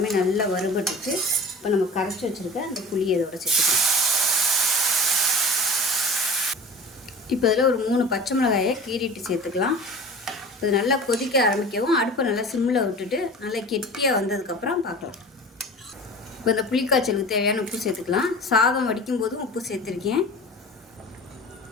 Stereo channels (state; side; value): normal; both; correlation 0.38